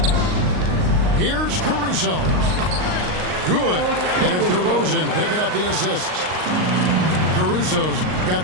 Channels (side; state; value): left; late; 39 ms